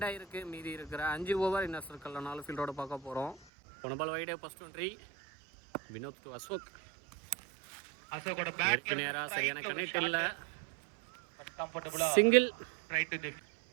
ஆயிருக்கு. மீதி இருக்கிற 5 ஓவர் இன்னர் சர்க்கிளில் 4 ஃபீல்டோட பார்க்க போகிறோம். போன பால் வைடே ஃபர்ஸ்ட் ஒன்ட்ரி. வினோத் டு அசோக். அசோக்கோட பேட் நேரா சரியான கனெக்ட் இல்லை. சிங்கிள்.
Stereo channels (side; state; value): left; drops out; at 3.4 s